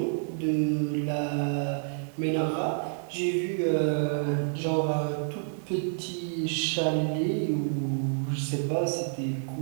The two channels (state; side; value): silent; left; 59 dB below the other